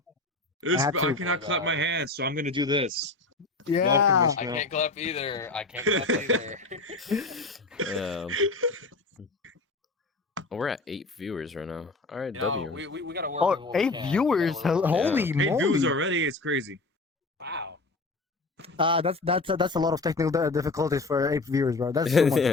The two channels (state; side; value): quieter; right; 3.4 dB